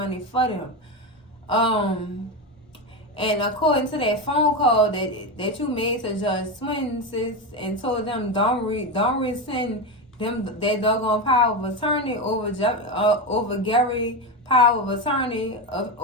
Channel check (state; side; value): normal; both; correlation 0.15